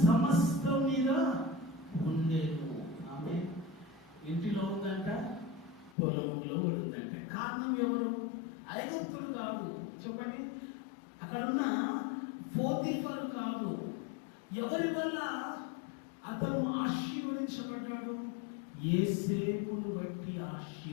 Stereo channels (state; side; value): drops out; right; at 6.0 s